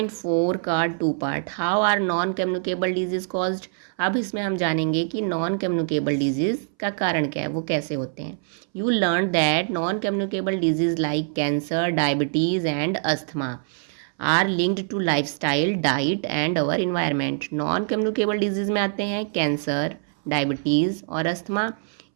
का 2 part, how are non communicable diseases caused. अब इसमें हम जानेंगे कि नॉन कम्युनिकेबल डिजीज़ का कारण क्या है, वो कैसे होते हैं। You learn that non communicable disease like cancer, diabetes and asthma are linked to lifestyle, diet and our environment. Non communicable diseases में आते हैं कैंसर, डायबिटीज़ और अस्थमा।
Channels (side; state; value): left; silent; 62 dB below the other